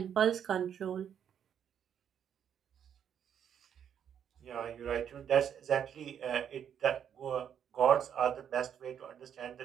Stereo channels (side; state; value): left; quieter; 8.7 dB